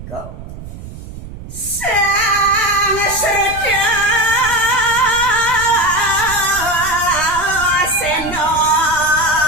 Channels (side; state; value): right; noise; rumble, 13 dB below the sound